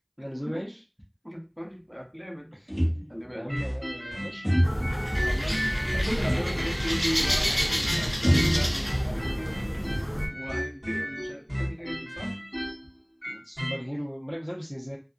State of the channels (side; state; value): both; identical; correlation 1.00